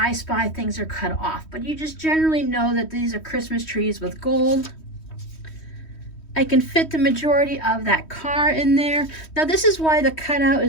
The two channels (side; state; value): right; late; 3.1 ms